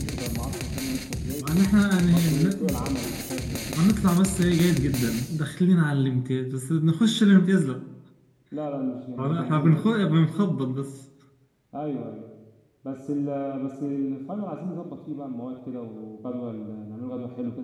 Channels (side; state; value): both; identical; correlation 1.00